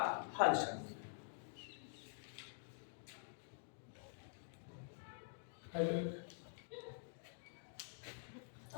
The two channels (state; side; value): silent; right; digital silence